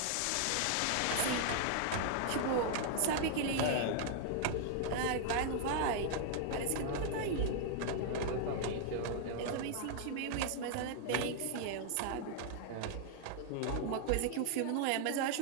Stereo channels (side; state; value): both; different; correlation -0.01